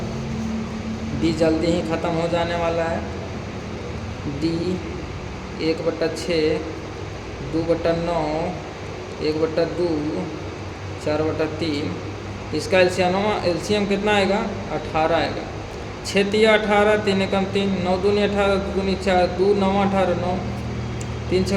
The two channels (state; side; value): identical; both; correlation 1.00